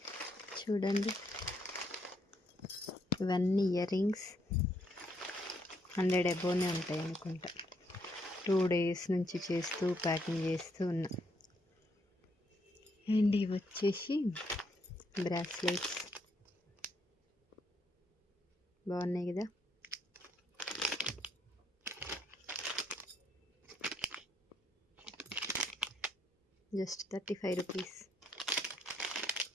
చూడండి, ఇవన్నీ ఇయర్ రింగ్స్ 100 అబోనే ఉంటాయి అనుకుంటా. 2 days నుంచి చేస్తూ ప్యాకింగ్ చేస్తూ ఉన్నా. అండ్ ఇవి వచ్చేసి బ్రాస్లెట్స్, బాగున్నాయి కదా. Just 35 rupees.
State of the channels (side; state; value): both; normal; correlation 0.73